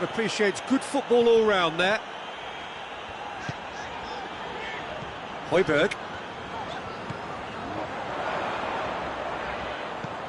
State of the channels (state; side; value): identical; both; correlation 1.00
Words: appreciates good football all round there. Højbjerg.